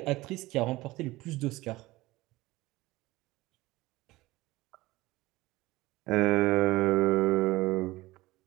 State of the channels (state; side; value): quieter; left; 19.3 dB